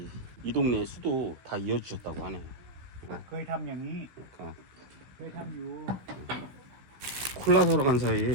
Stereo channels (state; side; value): late; left; 16 ms